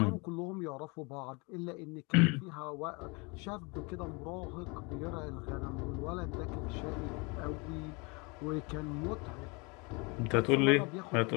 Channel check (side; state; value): right; quieter; 29.2 dB